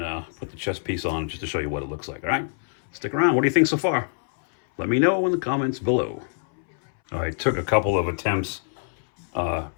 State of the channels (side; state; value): right; silent; 62 dB below the other